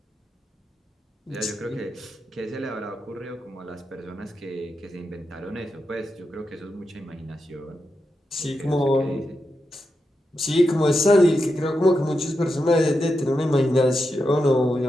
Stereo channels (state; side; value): normal; both; correlation 0.87